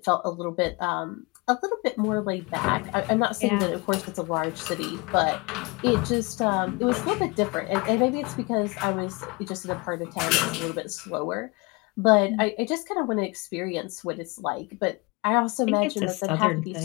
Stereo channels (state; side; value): quieter; right; 27.4 dB